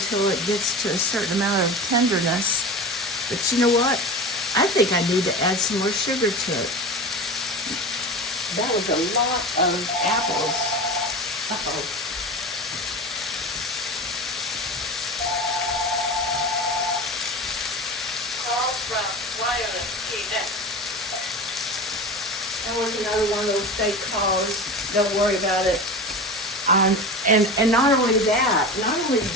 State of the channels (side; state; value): both; normal; correlation 0.30